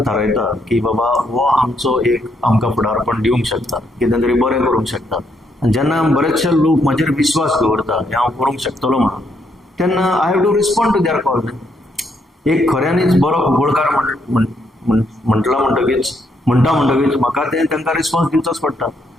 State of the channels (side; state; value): both; normal; correlation 0.75